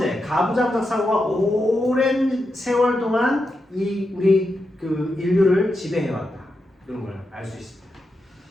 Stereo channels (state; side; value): normal; both; correlation 0.86